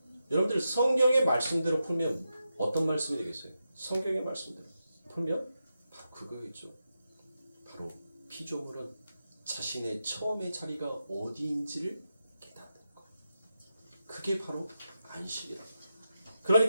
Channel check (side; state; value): both; inverted; correlation -0.88